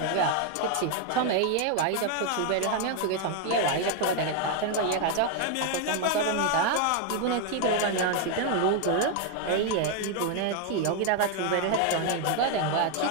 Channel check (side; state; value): both; different; correlation 0.00